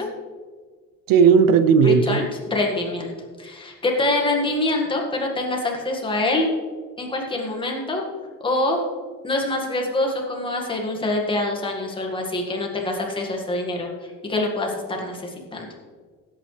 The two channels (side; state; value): both; normal; correlation 0.20